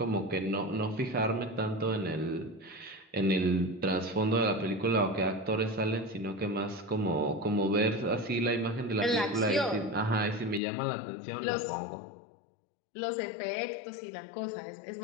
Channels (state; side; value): drops out; right; at 10.6 s